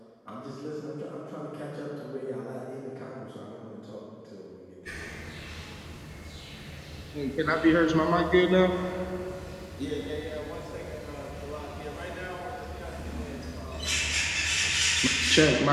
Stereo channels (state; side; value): identical; both; correlation 1.00